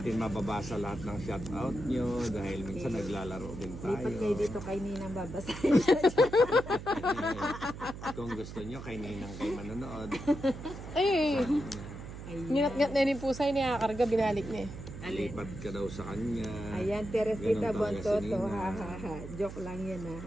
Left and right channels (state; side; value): noise; right; hum, 11 dB below the sound